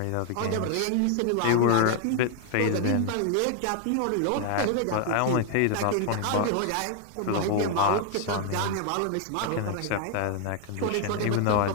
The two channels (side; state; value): both; different; correlation 0.00